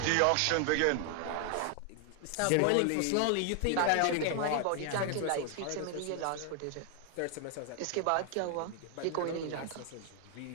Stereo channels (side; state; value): both; different; correlation 0.00